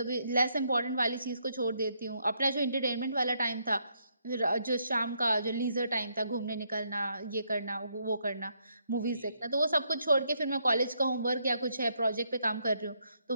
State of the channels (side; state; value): both; inverted; correlation -0.75